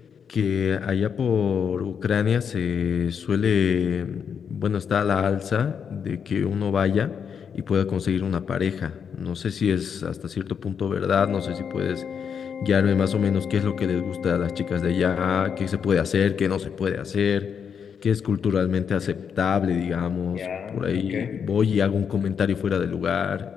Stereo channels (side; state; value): right; quieter; 7.1 dB